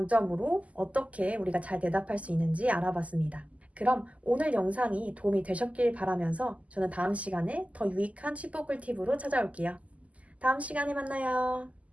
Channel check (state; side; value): late; left; 0.069 ms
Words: 어떻게 우리가 잘 대답할 수 있는지 알아봤습니다. 그럼 오늘 영상이 도움이 되셨길 바라면서 저는 다음 시간에 더 유익한 칩보 꿀팁으로 찾아올게요. 다음 시간에 만나요.